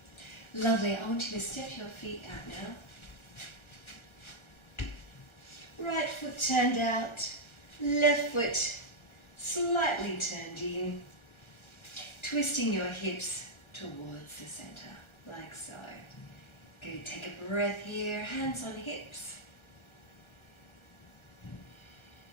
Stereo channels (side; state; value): right; late; 1.3 ms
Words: Lovely, I want you to step your feet out now. Right foot turned out, left foot slightly turned in, twisting your hips towards the center, like so. Good, take a breath here, hands on hips.